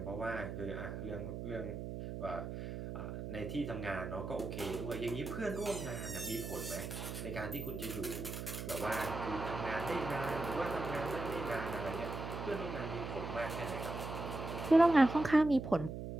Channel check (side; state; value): right; noise; hum, 6 dB below the sound